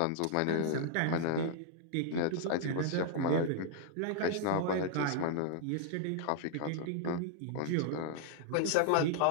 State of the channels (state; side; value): different; both; correlation -0.01